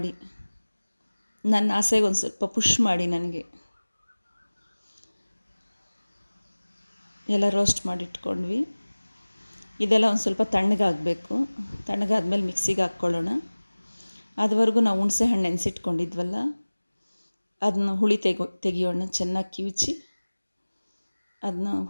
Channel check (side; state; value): both; inverted; correlation -1.00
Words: ನನ್ನ ಆಸೆಗೆ ಒಂದು ಸ್ವಲ್ಪ ಪುಷ್ ಮಾಡಿ ನನಗೆ. ಎಲ್ಲ ರೋಸ್ಟ್ ಮಾಡಿಟ್ಕೊಂಡ್ವಿ. ಇದೆಲ್ಲ ಒಂದು ಸ್ವಲ್ಪ ತಣ್ಣಗಾಗಬೇಕು. ತಣ್ಣಗಾದ್ಮೇಲೆ ಮಿಕ್ಸಿಗೆ ಹಾಕ್ಕೊಳ್ಳೋಣ. ಅದುವರೆಗೂ ನಾವು ಹುಣಸೆ ಹಣ್ಣು ನೆನೆಸಿಟ್ಕೊಂಡಿದ್ವಲ್ಲ ಅದನ್ನ ಹುಳಿ ತೆಗಿಯೋಣ, ಚೆನ್ನಾಗಿ ಕಿವುಚಿ ಅದನ್ನ